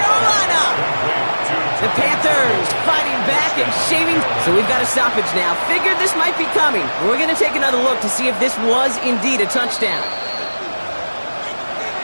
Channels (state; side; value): inverted; both; correlation -1.00